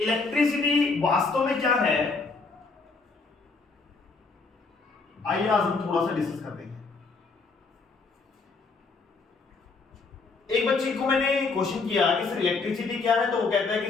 वास्तव में क्या है, आइए आज हम थोड़ा सा डिस्कस करते हैं। एक बच्चे को मैंने क्वेश्चन किया कि सर इलेक्ट्रिसिटी क्या है, तो वो कहता है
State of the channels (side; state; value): right; quieter; 4.2 dB